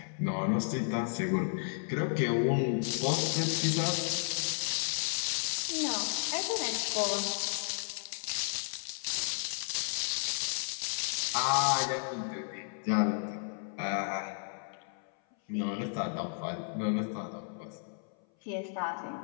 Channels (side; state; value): right; silent; 56 dB below the other